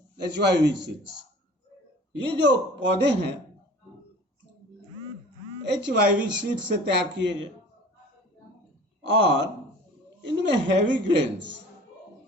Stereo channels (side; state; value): both; normal; correlation 0.44